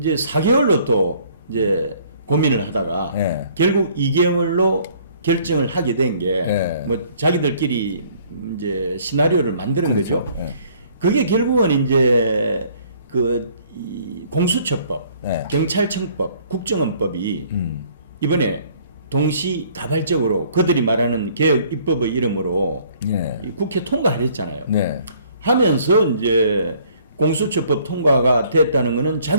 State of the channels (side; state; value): both; inverted; correlation -0.59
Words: 4개월로 또 이제 고민을 하다가 예. 결국 2개월로 결정을 하게 된 게 뭐 예. 자기들끼리 이제 시나리오를 만드는 그렇죠. 거죠. 예. 그게 결국은 이제 이 공수처법, 예. 경찰청법, 국정원법이 이번에 동시다발적으로 그들이 말하는 개혁 입법의 이름으로 예. 이 국회 통과를 했잖아요. 네. 하면서 이제 공수처법 통과가 됐다는 것은